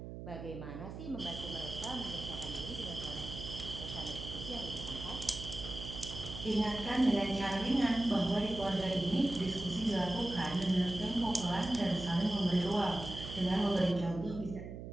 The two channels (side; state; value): right; noise; hum, 9 dB below the sound